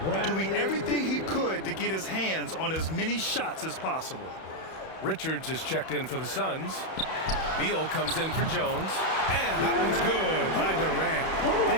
doing everything he could to get his hands on as many shots as possible. Richards is checked in for the Suns. Beal comes in for Jones. And that one's good by Durant.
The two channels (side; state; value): right; late; 31 ms